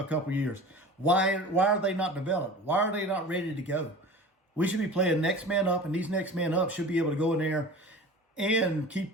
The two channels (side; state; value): both; normal; correlation 0.37